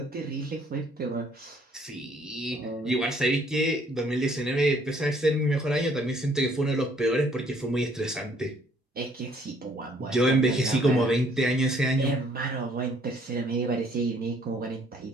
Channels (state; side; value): normal; both; correlation 0.63